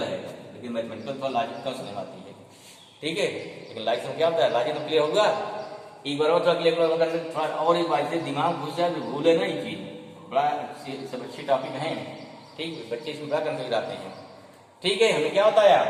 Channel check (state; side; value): identical; both; correlation 1.00